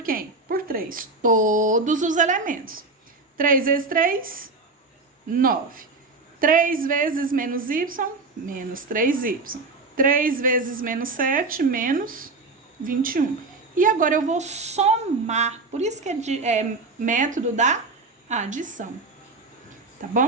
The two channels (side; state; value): left; quieter; 3.7 dB